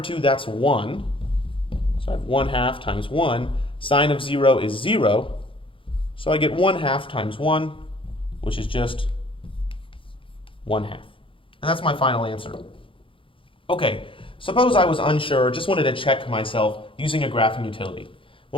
that's 1. So I have 1/2 times 1. Sine of 0 is 0. So I get 1/2 times 1, which is just 1/2. And that's my final answer. Okay, suppose I was unsure, just wanted to check myself using a graphing utility.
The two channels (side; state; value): right; late; 0.25 ms